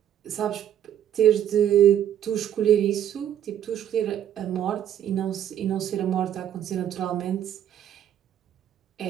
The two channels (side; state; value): left; quieter; 10.5 dB